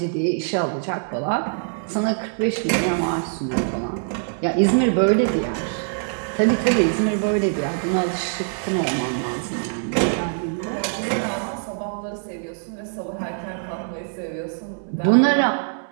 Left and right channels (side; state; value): left; silent; digital silence